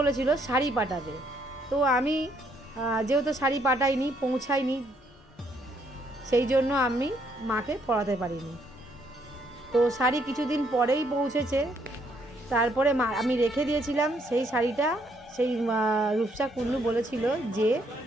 শাড়ি পাঠাবে। তো আমি যেহেতু শাড়ি পাঠাইনি, পৌঁছাইনি, সেই জন্য আমি মাকে পরাতে পারিনি। তো শাড়ি কিছুদিন পরেই পৌঁছেছে। তারপরে আমি রেখে দিয়েছিলাম সেই শাড়িটা। সেই রূপসা কুণ্ডু বলেছিল যে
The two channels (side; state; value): both; normal; correlation 0.70